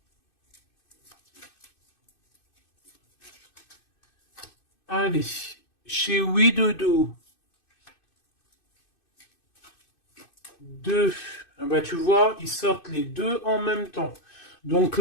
Allez, chez Widodo. 2. Ah bah, tu vois, ils sortent les deux en même temps. Donc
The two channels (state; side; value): late; right; 2.6 ms